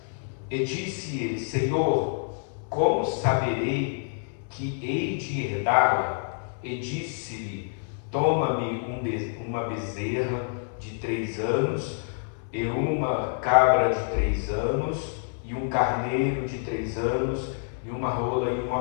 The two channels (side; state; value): right; silent; 60 dB below the other